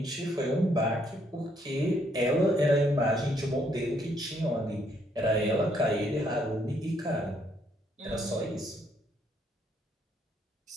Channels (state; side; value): normal; both; correlation 0.70